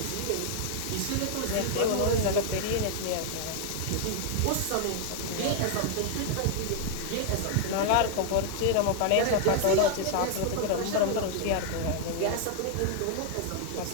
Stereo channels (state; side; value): different; both; correlation 0.00